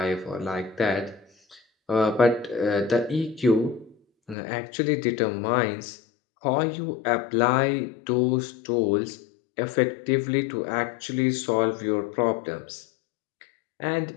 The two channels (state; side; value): drops out; right; at 4.4 s